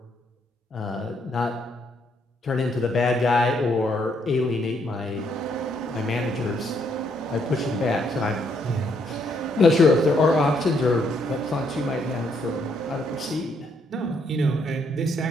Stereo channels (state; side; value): normal; both; correlation 0.72